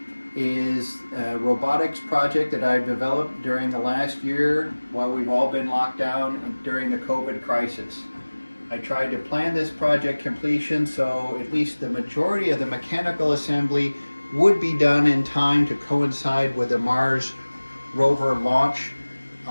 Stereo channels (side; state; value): both; inverted; correlation -1.00